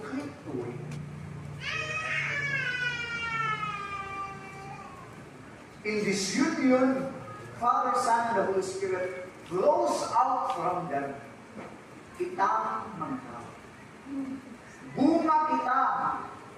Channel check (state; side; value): identical; both; correlation 1.00